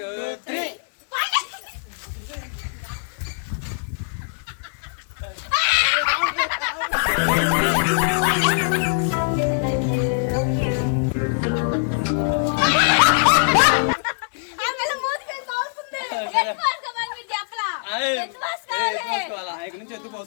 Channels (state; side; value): silent; right; 64 dB below the other